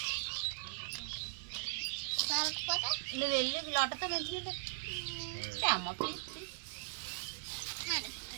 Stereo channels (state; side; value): silent; left; 52 dB below the other